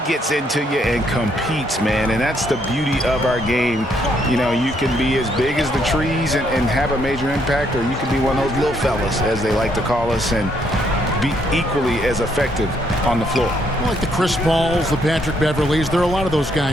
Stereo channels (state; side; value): normal; both; correlation 0.72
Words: gets into you and competes, man. And that's the beauty of our game. You know, you can be as big as the trees and have a major impact, or you can be one of those little fellas, as they like to call us, and be equally as effective on the floor. Like the Chris Pauls, the Patrick Beverleys, there are a lot of those